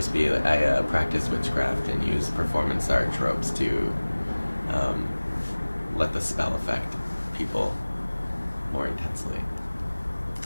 be I practice witchcraft and use performance art tropes to let the spell affect people more intensely.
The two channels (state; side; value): inverted; both; correlation -1.00